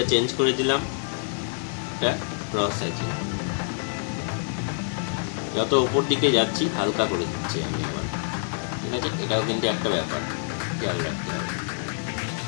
চেঞ্জ করে দিলাম, এটা ক্রস হ্যাচিং। যত উপর দিকে যাচ্ছি হালকা করে দিচ্ছি আমি আবার, ঠিক আছে। এটাও কিন্তু একটা ব্যাপার, খেয়াল রাখতে হবে।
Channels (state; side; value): silent; right; 61 dB below the other